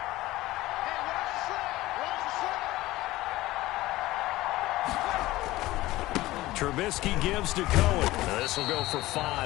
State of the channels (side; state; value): right; quieter; 17.6 dB